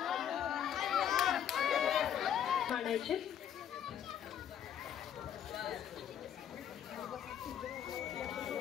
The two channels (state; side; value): quieter; right; 9.5 dB